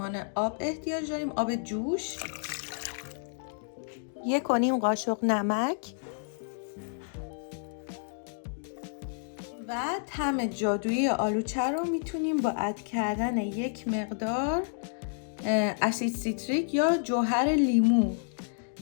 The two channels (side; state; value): right; silent; digital silence